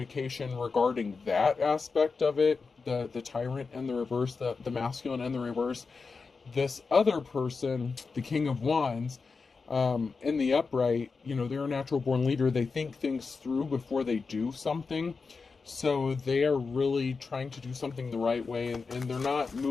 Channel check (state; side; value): quieter; right; 4.6 dB